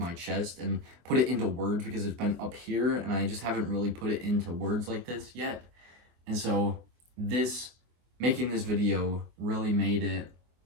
chest and put it into words, because it's been up here and I just haven't really put it into words like this yet. And so making this video really made it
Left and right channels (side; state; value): left; late; 24 ms